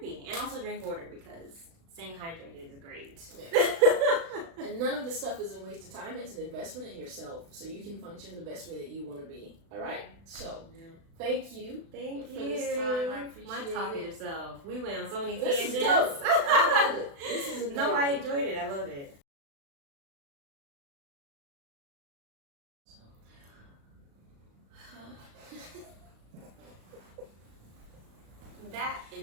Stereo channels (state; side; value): late; left; 36 ms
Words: And also drink water, because staying hydrated is great. Yeah. And none of this stuff is a waste of time. It's an investment in yourself so you can function the best way that you want to be. All right? So, thank you. Thank you for this time. I appreciate my talkative self. We went on so many This tangents. is dope. I love it. This is a No, I enjoyed it. I love it. That